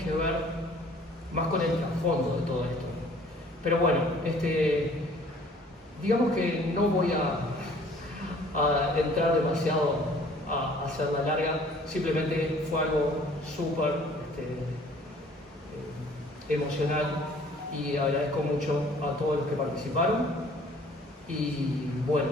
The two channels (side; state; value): both; normal; correlation 0.54